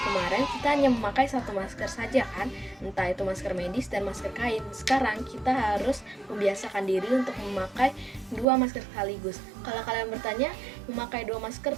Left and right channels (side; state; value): left; drops out; at 8.5 s